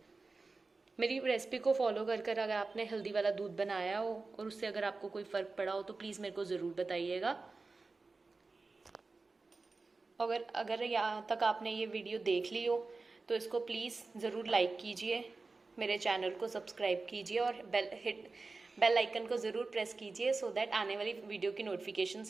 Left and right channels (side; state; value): left; quieter; 3.8 dB